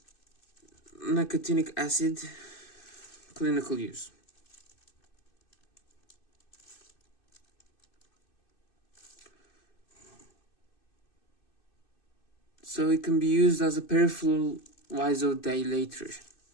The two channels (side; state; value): right; late; 2.6 ms